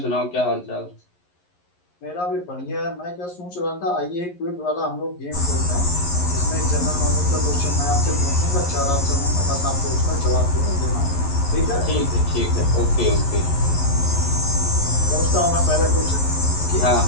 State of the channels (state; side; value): late; right; 11 ms